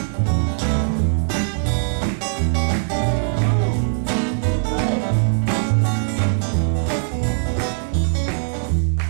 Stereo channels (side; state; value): left; silent; digital silence